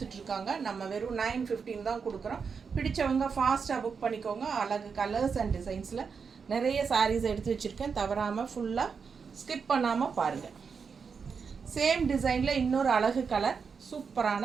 நம்ம வெறும் 915 தான் கொடுக்குறோம். பிடிச்சவங்க ஃபாஸ்ட்டாக புக் பண்ணிக்கோங்க. அழகு கலர்ஸ் அண்ட் டிசைன்ஸில் நிறைய சாரீஸ் எடுத்து வச்சுருக்கேன், தவறாமல் ஃபுல்லாக ஸ்கிப் பண்ணாமல் பாருங்கள். சேம் டிசைனில் இன்னொரு அழகு கலர்,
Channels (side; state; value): left; quieter; 5.8 dB